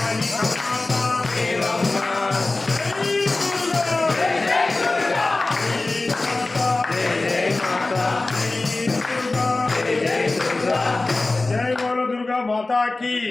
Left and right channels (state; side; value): quieter; right; 3.2 dB